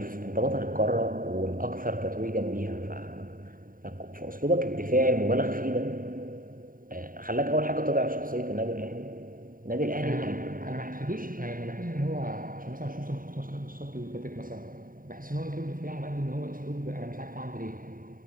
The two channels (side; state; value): left; late; 0.41 ms